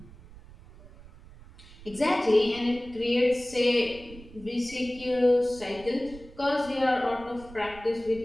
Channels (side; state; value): right; noise; rumble, 19 dB below the sound